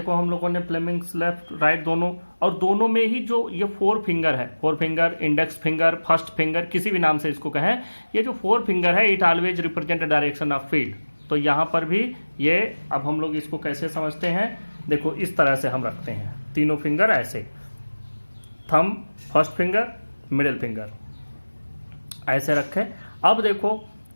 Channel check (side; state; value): both; inverted; correlation -1.00